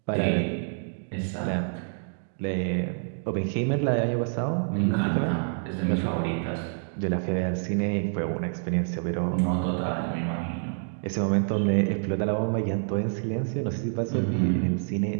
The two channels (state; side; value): silent; left; digital silence